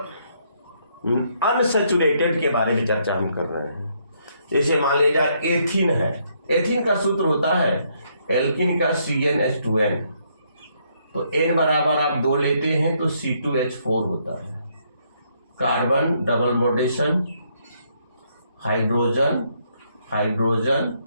अनसेचुरेटेड के बारे में चर्चा हम कर रहे हैं। जैसे मान लीजिए एथीन है, एथीन का सूत्र होता है एल्किन का CnH2n, तो n बराबर आप 2 लेते हैं तो C2H4 होता है। Carbon double bondation, hydrogen hydrogen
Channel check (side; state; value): both; inverted; correlation -0.72